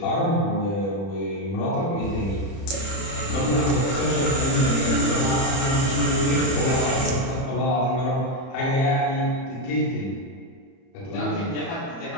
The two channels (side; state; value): right; late; 30 ms